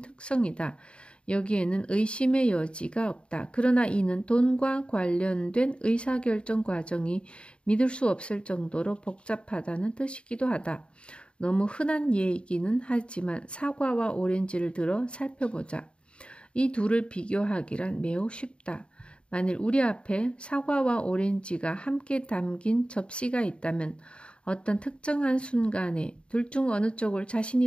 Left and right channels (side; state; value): right; late; 0.055 ms